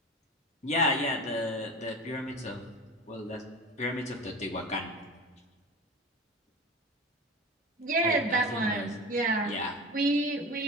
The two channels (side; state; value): both; normal; correlation 0.32